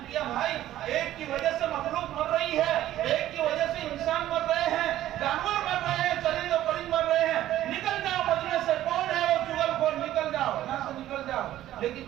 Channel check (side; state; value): left; quieter; 13.4 dB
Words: کیا بھائی ایک کی وجہ سے مخلوق مر رہی ہے، ایک کی وجہ سے انسان مر رہے ہیں، جانور مر رہے ہیں، چرند و پرند مر رہے ہیں، نکل جاؤ مجمع سے، کون ہے وہ چغل خور، نکل جاؤ یہاں سے نکل جاؤ،